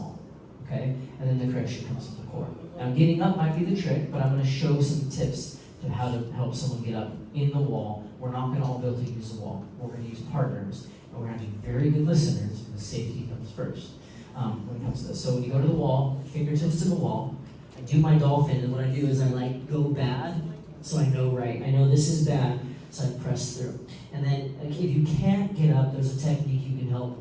Okay? And then the correction comes from the core. Now getting up might be the trick, but I'm going to show some tips to how to help someone get up in the wall. We're not going to all be able to use the wall. We're going to use partners. And we're going to be very good listeners because safety comes first when it comes to this. So when you go to the wall, fingertips to the wall, I do my dolphin, and what I do is I like go bad, so I know right. I know this is bad, so I press through. And then if you can't get up, there's a technique you can help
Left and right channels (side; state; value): both; identical; correlation 1.00